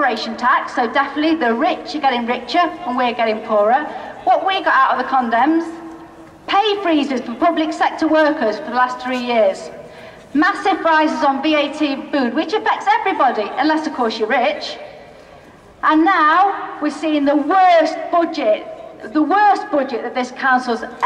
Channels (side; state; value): both; identical; correlation 1.00